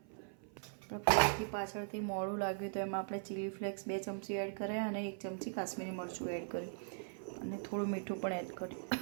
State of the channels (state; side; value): silent; left; 51 dB below the other